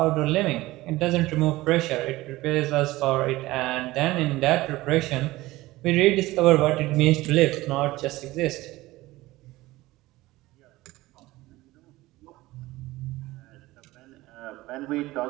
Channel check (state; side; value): quieter; left; 18.5 dB